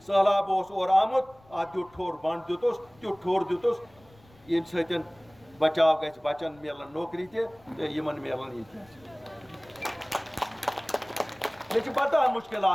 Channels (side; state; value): left; noise; rumble, 28 dB below the sound